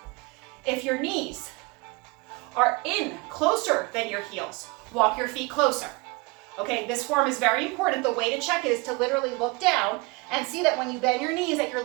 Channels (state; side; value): quieter; left; 26.3 dB